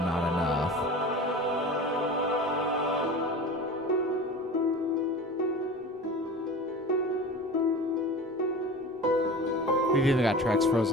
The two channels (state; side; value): normal; both; correlation 0.35